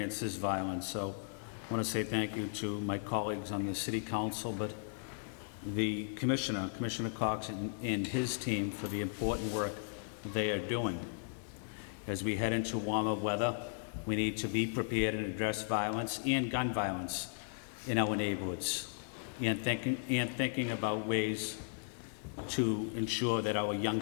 this violence. So I want to say thank you to my colleagues on the City Council, but the Commissioner Cox and his team for the important work they are doing. As we head into warmer weather, we need to be prepared and address violence and gun violence in our neighborhoods, and thinking about ways to ensure that our young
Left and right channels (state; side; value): silent; right; digital silence